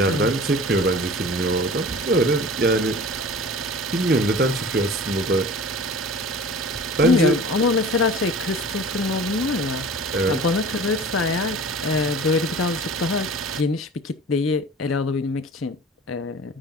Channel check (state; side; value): normal; both; correlation 0.41